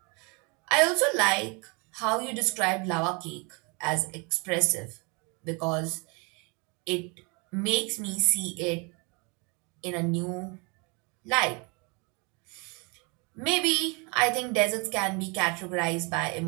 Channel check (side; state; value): left; quieter; 31.0 dB